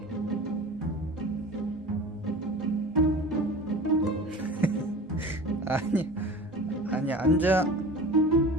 아니 아니, 앉아.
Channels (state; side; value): normal; both; correlation 0.37